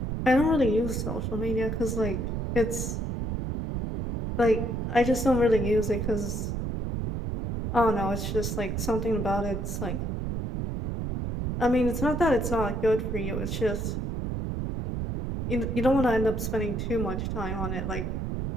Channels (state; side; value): noise; right; rumble, 2 dB below the sound